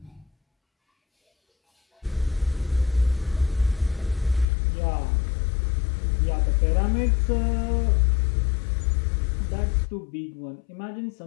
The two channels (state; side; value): drops out; right; at 4.5 s